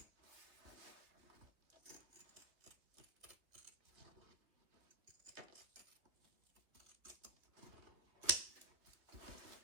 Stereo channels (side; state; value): left; late; 3.0 ms